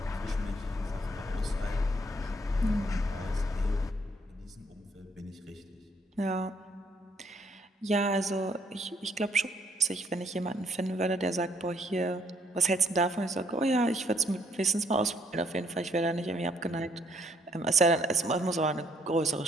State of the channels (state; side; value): normal; both; correlation 0.68